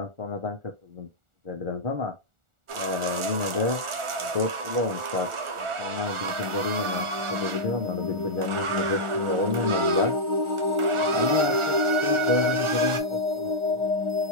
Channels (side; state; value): left; late; 1.4 ms